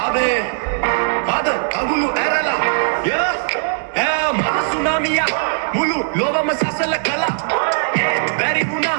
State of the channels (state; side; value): silent; left; digital silence